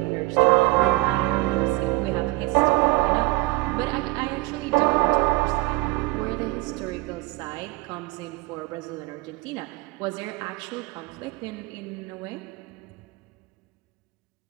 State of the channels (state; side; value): quieter; left; 22.1 dB